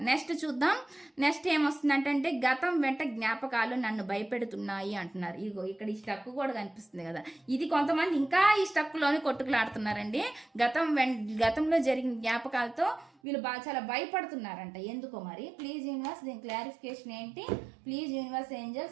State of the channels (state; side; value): drops out; left; at 13.1 s